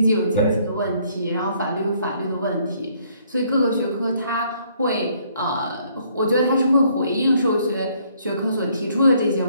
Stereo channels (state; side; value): inverted; both; correlation -0.65